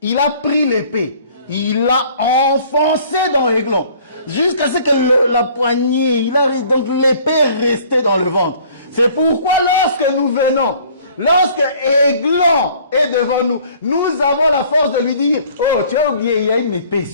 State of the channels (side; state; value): both; inverted; correlation -0.54